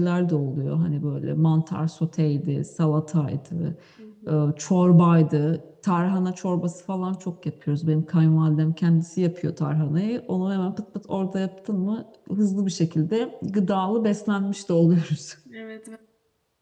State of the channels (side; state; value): both; identical; correlation 1.00